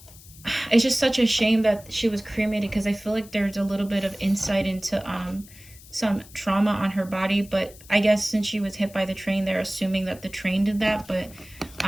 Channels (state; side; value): noise; left; hiss, 21 dB below the sound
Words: it's just such a shame that she was cremated, because I feel like there's a little bit of insight into some trauma on her body. But I guess since she was hit by the train, they're assuming that the train did that. But